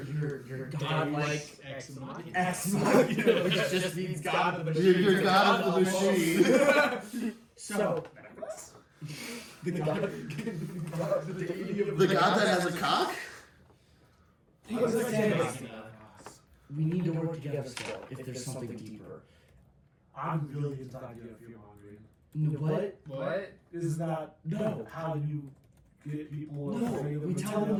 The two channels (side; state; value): both; identical; correlation 1.00